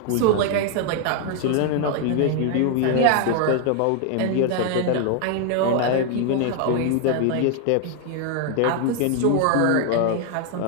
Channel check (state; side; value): different; both; correlation 0.00